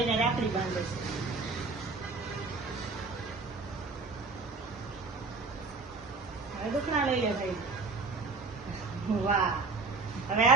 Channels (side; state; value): left; quieter; 4.0 dB